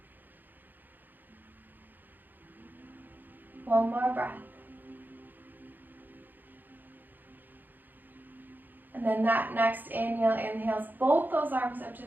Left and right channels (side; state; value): left; late; 0.087 ms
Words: One more breath. And then that next inhale inhales both those arms up to